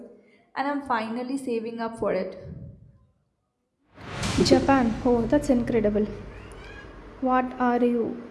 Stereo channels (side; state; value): both; identical; correlation 1.00